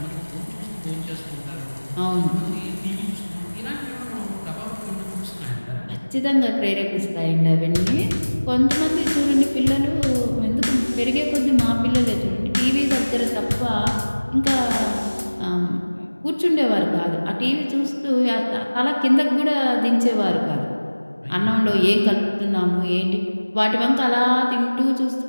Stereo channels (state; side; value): inverted; both; correlation -1.00